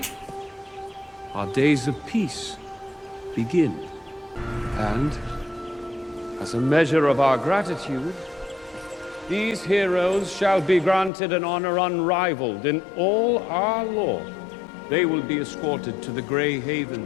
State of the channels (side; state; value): right; drops out; at 11.1 s